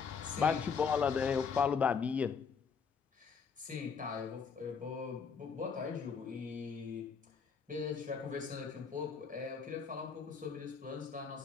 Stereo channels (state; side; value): quieter; right; 6.0 dB